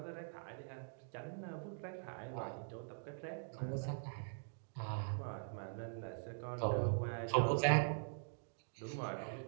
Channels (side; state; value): left; silent; digital silence